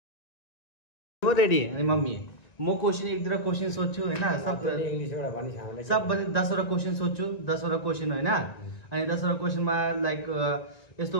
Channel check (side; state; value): right; late; 1.9 ms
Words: Ready? Mummy म question एक दुईवटा question सोध्छु हैन, सब इंग्लिशबाट भनि सामले सब 10 वटा क्वेशन सोध्छु, 10 वटा क्वेशन हैन. अनि 10 वटा क्वेशनमा लाइक यस्तो